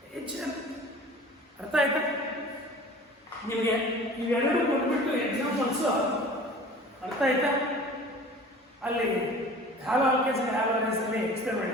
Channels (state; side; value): normal; both; correlation 0.43